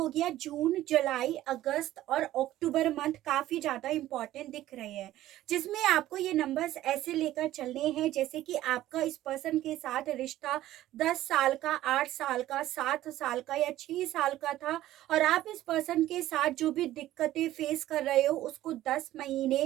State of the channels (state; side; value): quieter; left; 14.4 dB